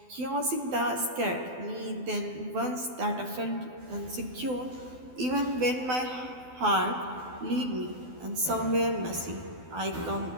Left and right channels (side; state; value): left; late; 12 ms